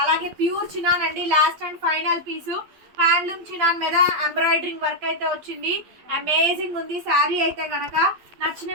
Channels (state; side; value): late; left; 12 ms